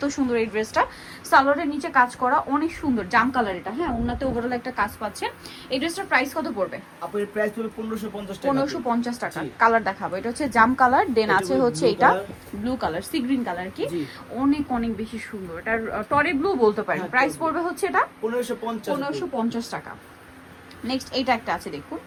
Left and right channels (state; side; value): identical; both; correlation 1.00